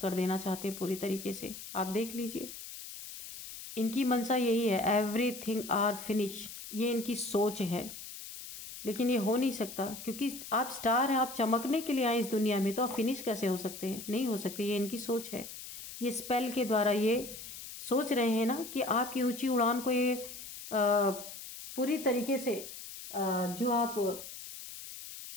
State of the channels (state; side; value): noise; left; hiss, 12 dB below the sound